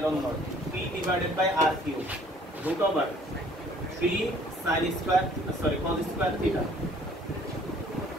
naught p divided by r cube √3 sin square sorry cos square theta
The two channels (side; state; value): both; normal; correlation 0.56